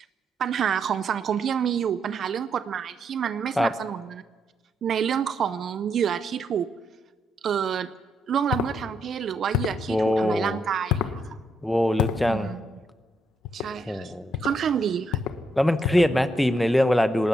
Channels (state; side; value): normal; both; correlation 0.78